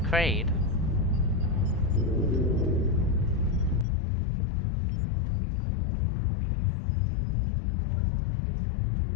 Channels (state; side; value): drops out; right; at 3.9 s